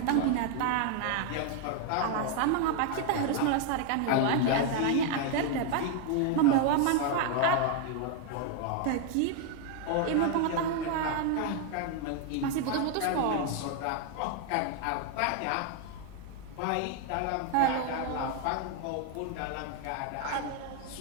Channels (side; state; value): both; different; correlation 0.00